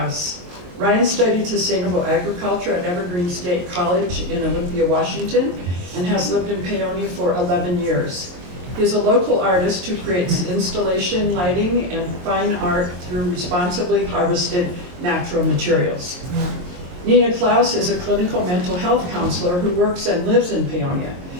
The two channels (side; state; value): left; late; 22 ms